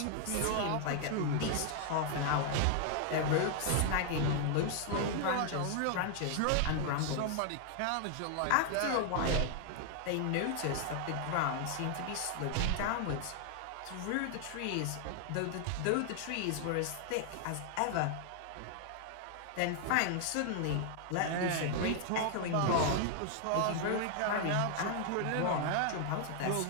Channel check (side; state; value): both; different; correlation 0.00